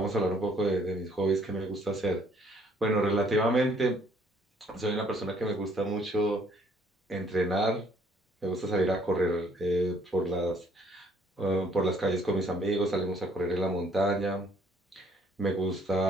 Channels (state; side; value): normal; both; correlation 0.62